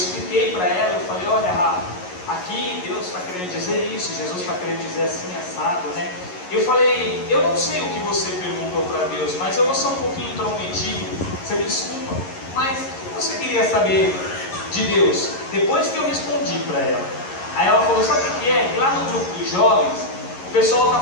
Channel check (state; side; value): late; right; 11 ms